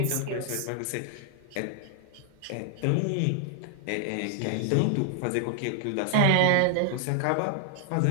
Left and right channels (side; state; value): both; different; correlation 0.00